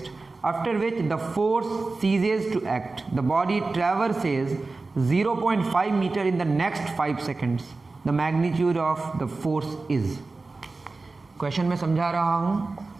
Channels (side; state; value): left; quieter; 3.6 dB